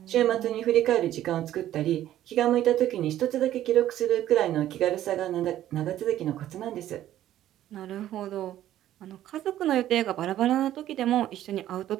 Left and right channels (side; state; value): left; quieter; 12.7 dB